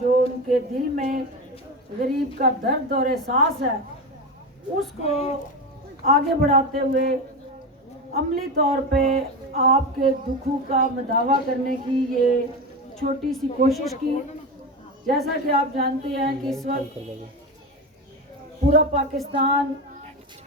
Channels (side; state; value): both; normal; correlation 0.20